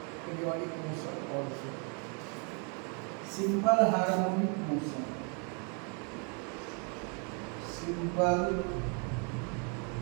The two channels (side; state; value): left; quieter; 37.0 dB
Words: periodic motion also. Simple harmonic motion. Simple